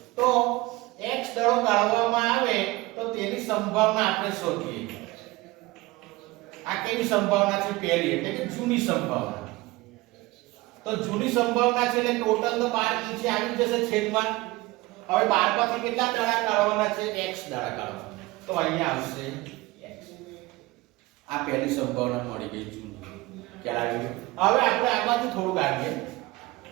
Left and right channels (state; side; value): quieter; left; 20.6 dB